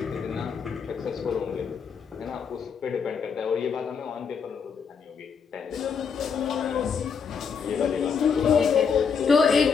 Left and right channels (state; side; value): quieter; right; 6.2 dB